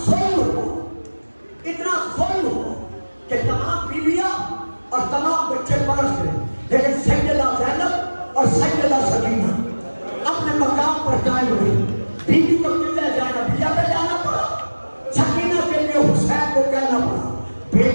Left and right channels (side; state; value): both; inverted; correlation -1.00